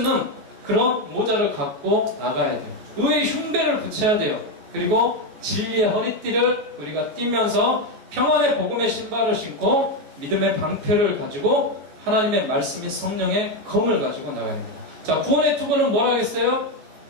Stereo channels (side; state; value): left; late; 14 ms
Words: 그런 모자를 갖고 나가야 돼요. 의의 흉배를 붙여야 돼요. 그리고 진리의 허리띠를 우리가 띠면서 평안의 복음의 신발을 신고 믿음의 방패를 가지고 하나님의 말씀인 성령의 검을 가지고 나가야 됩니다. 자, 구원의 투구는 뭐라 하겠어요?